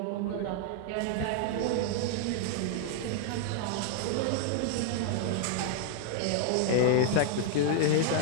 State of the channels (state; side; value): different; both; correlation 0.00